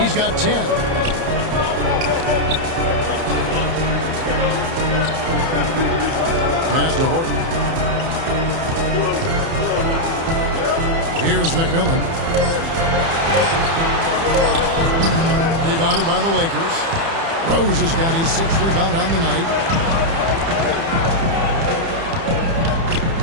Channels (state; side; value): late; left; 30 ms